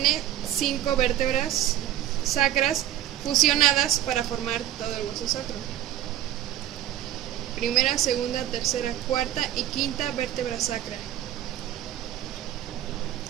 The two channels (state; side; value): quieter; left; 12.4 dB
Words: 5 vértebras sacras fusionadas para formar todo el hueso sacro. Primera, segunda, tercera, cuarta y quinta vértebra sacra.